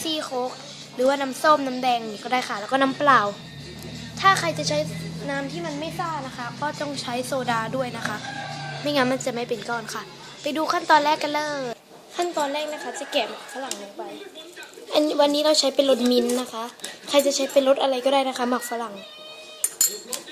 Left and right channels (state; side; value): identical; both; correlation 1.00